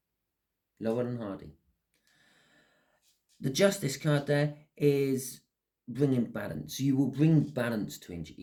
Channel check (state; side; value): identical; both; correlation 1.00